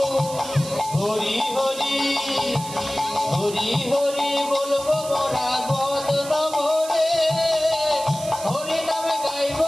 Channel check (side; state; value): right; noise; hiss, 12 dB below the sound